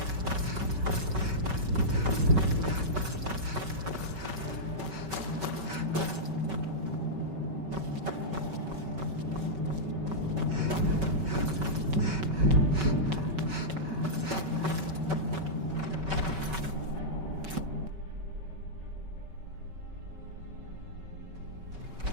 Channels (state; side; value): late; left; 5.3 ms